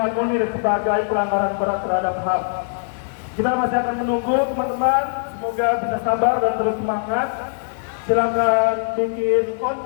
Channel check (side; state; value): right; silent; digital silence